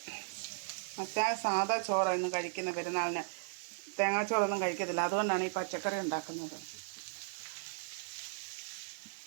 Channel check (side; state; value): left; silent; 54 dB below the other